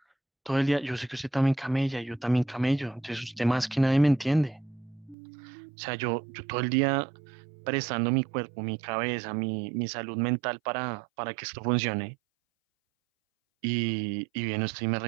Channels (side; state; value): left; drops out; at 5.2 s